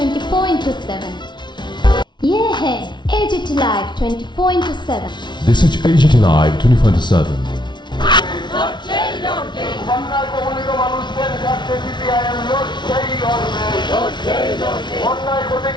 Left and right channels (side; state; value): right; late; 0.22 ms